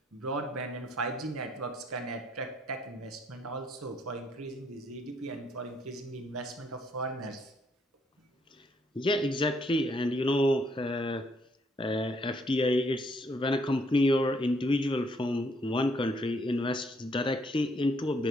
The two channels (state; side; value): normal; both; correlation 0.69